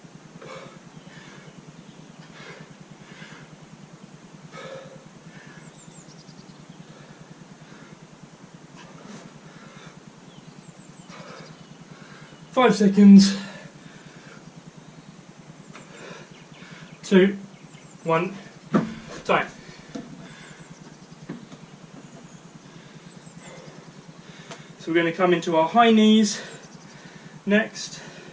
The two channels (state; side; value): identical; both; correlation 1.00